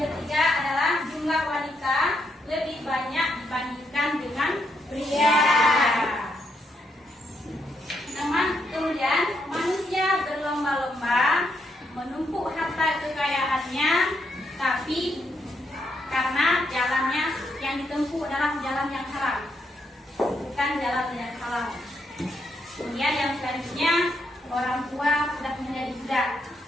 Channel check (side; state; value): both; normal; correlation 0.78